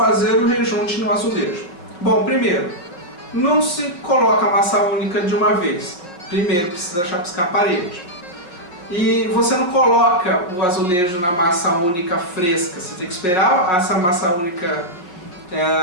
o rejunte no azulejo. Bom, primeiro, não se coloca a massa única de uma vez. Primeiro precisa chapiscar a parede. E você não coloca o azulejo na massa única fresca, você tem que esperar essa massa única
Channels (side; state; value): right; late; 5.6 ms